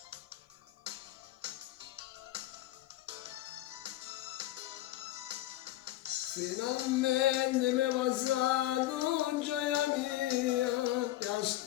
Finalmente mi è passato gioia mia, che a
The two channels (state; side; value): quieter; right; 15.0 dB